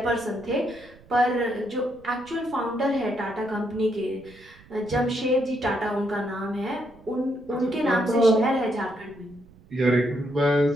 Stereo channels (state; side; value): noise; right; rumble, 25 dB below the sound